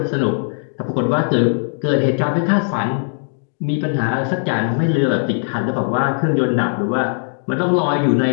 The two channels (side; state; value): right; silent; digital silence